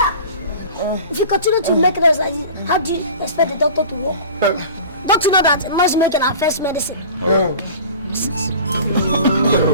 If you continue to make noise like this, how do you expect the doctor to work? Don't you know that noise making our first medicine?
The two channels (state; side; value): inverted; both; correlation -0.40